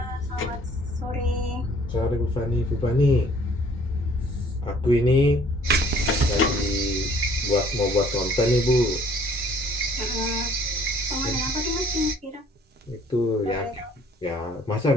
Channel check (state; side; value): normal; both; correlation 0.57